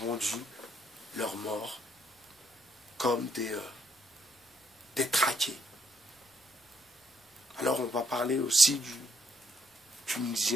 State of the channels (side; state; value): both; normal; correlation 0.71